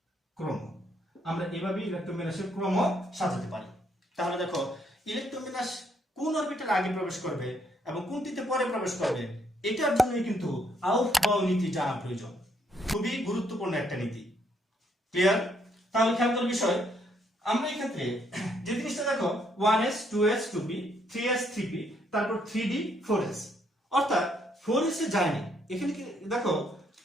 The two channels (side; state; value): both; normal; correlation 0.71